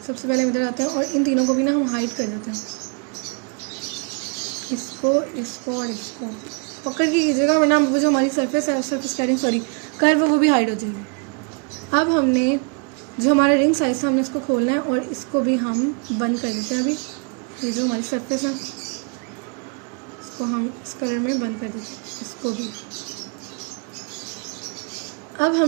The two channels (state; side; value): quieter; left; 36.1 dB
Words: पहले इधर आते हैं और इन तीनों को भी ना हम हाइड कर देते हैं, इसको और इसको पकड़ के कीजिएगा, वरना वो जो हमारी सरफेस है, सरफेस कटिंग कर्व, वो भी हाइड हो जाएगी। अब हमने जो हमारा रिंग साइज है, हमने इसको खोलना है और इसको भी हम बंद कर देते हैं। अभी ये जो हमारी सरफेस है, इसको हम इस कलर में बंद कर देते हैं, इसको भी। अब